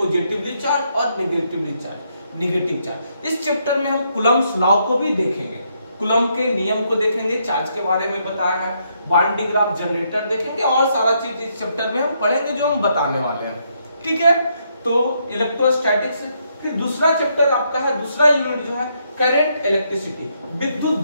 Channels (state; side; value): inverted; both; correlation -0.75